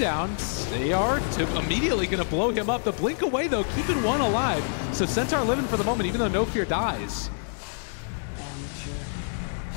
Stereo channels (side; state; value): right; silent; digital silence